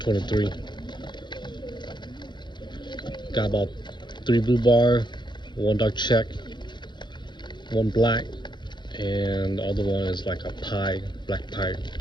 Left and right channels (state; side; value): late; right; 0.22 ms